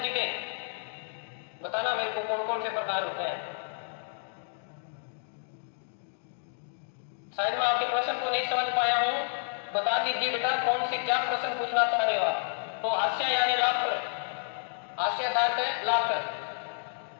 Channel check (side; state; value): right; silent; digital silence